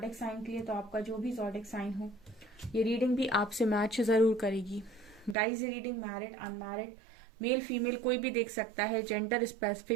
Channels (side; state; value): left; drops out; at 5.4 s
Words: साइन के लिए, तो आपका जो भी ज़ोडिक साइन हो ये रीडिंग भी आपसे मैच जरूर करेगी। गाइज, ये reading married unmarried male female कोई भी देख सकता है, जेंडर